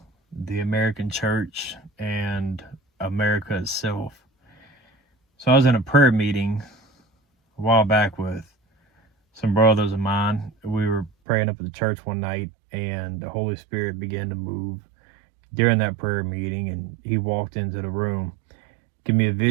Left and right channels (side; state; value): left; drops out; at 11.1 s